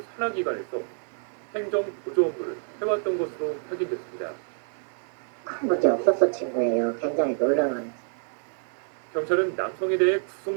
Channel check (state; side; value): silent; left; 60 dB below the other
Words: 산하기관에서 행정보조 업무를 해왔던 것으로 확인됐습니다. 큰 문제 없었어 친구예요. 굉장히 놀라운. 경찰은 남성에 대해